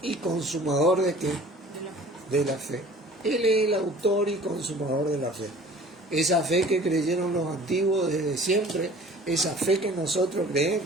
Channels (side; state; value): both; normal; correlation 0.47